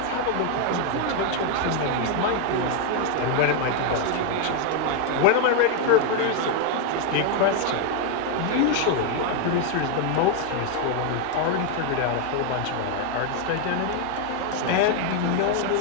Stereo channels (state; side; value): different; both; correlation 0.00